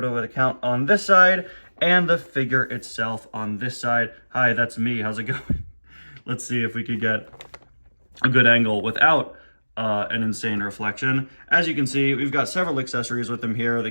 with a Count on this side, and the figure itself on this side. Hi, that's me. How's it going? Let's see if we could get a good angle without an insane reflection. As you can see, we've got several accessories with them here. The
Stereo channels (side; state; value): both; inverted; correlation -1.00